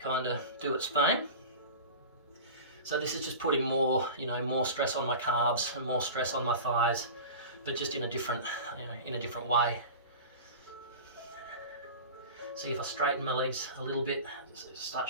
kind of do its thing. So this is just putting more, you know, more stress on my calves and more stress on my thighs, but just in a different, you know, in a different way. See if I straighten my legs a little bit, start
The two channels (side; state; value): both; inverted; correlation -0.33